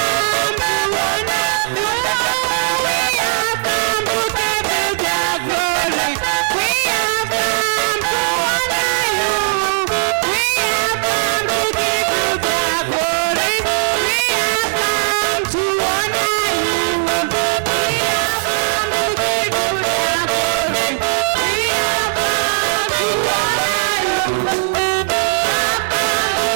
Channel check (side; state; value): left; silent; digital silence